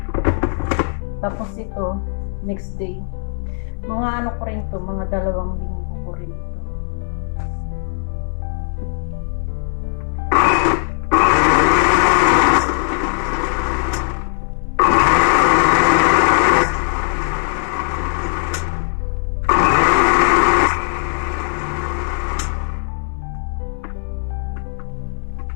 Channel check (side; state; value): right; silent; 67 dB below the other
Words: Tapos ito, next day. Mga ko rin to, mga 2 linggo ko rin ito.